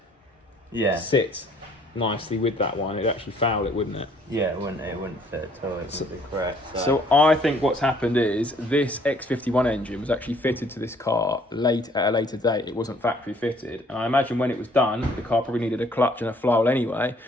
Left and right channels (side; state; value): both; normal; correlation 0.61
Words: sit nicely with that one. It'd actually foul it, wouldn't it? Yeah, it wouldn't fit at all. It would be correct. So I think what's happened is this X51 engine was actually fitted to this car at a later date. It wasn't factory fitted, and I imagine when it was done, the car probably needed a clutch and a flywheel anyway.